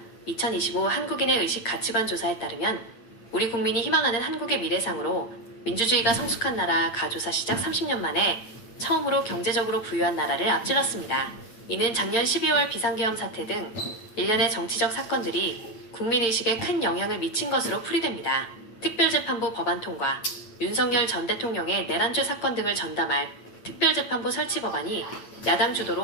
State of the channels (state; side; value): late; right; 8.9 ms